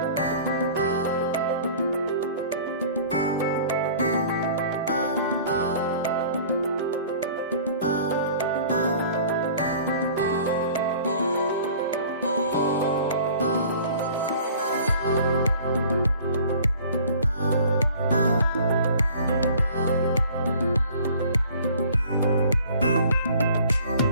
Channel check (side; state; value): both; inverted; correlation -0.48